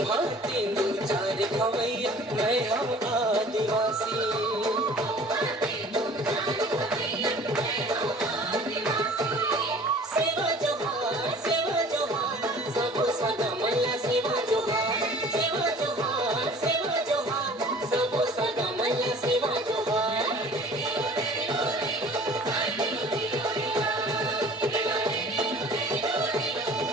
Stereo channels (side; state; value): both; normal; correlation 0.48